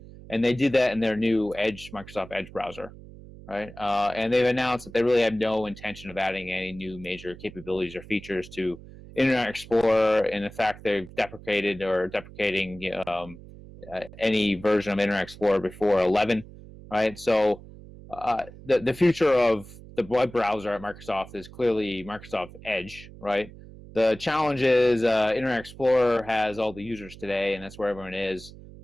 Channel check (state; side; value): noise; right; hum, 18 dB below the sound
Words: and they did that in their new Microsoft Edge browser, right? And they've announced that they really have no intention of adding any new major capabilities or features to Internet Explorer, and in fact, they've deprecating any version of Internet Explorer before 11, right? So the future of the web browser at Microsoft is clearly Microsoft Edge, right? The challenge is Internet Explorer has all the users today, and that's where everyone is.